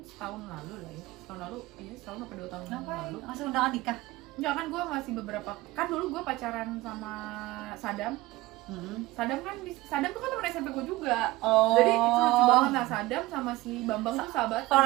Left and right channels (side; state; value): left; quieter; 19.2 dB